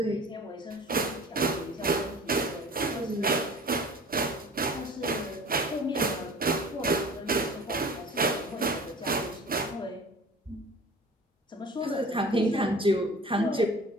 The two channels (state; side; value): normal; both; correlation 0.42